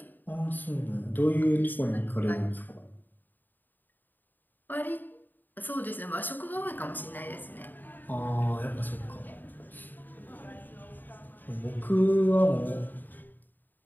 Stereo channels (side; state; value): right; late; 0.089 ms